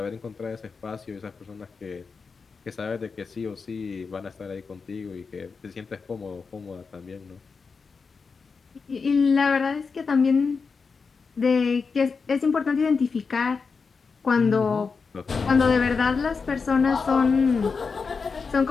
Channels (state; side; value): quieter; right; 5.0 dB